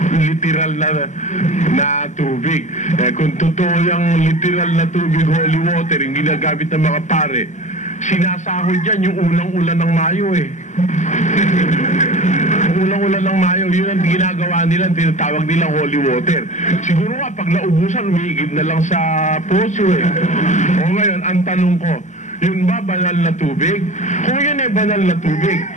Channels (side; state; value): right; late; 0.34 ms